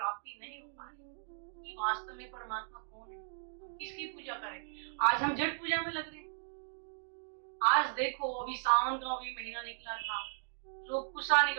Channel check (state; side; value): silent; left; digital silence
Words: नहीं हो पा रही कि वास्तव में परमात्मा कौन है, किसकी पूजा करें। आज हम जड़ पूजा में लग रहे हैं। आज देखो अभी सावन का अभी महीना निकला था, लोग कुशा